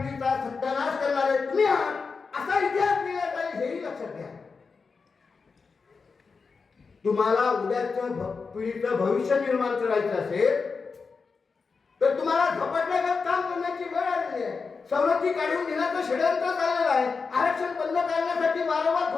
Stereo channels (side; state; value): right; quieter; 4.9 dB